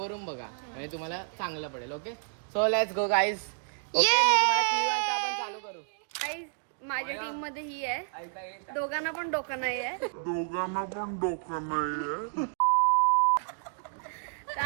बघा, म्हणजे तुम्हाला चांगलं पडेल. Okay, so let's go guys. चालू करू. गाईज, माझ्या टीम मध्ये ही आहे. दोघांना पण डोकं नाही आहे. तर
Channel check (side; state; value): left; silent; digital silence